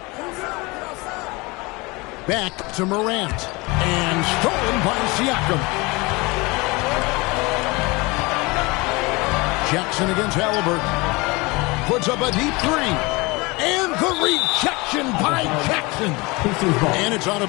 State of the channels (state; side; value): quieter; right; 24.8 dB